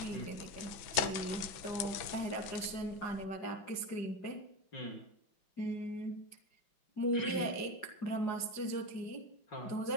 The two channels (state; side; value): late; right; 5.9 ms